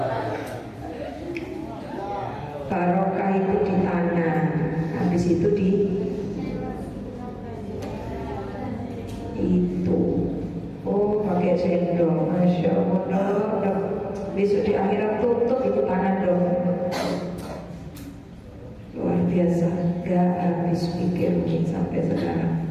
Barokah itu di tangan, habis itu di itu. Oh, pakai sendok, Masya Allah. Besok di akhirat tutup itu tangan dong. Luar biasa, gak habis pikir sampai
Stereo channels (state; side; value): identical; both; correlation 1.00